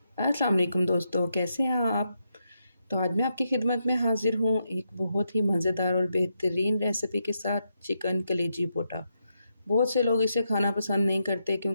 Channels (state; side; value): inverted; both; correlation -0.82